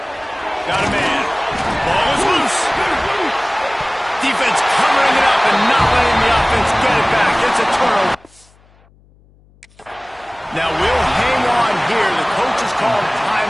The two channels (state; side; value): noise; left; hum, 30 dB below the sound